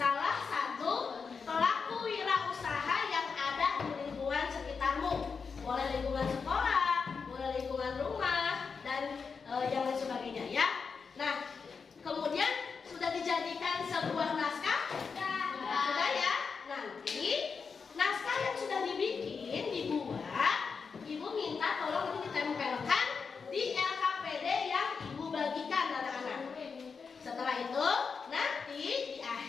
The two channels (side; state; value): right; quieter; 5.4 dB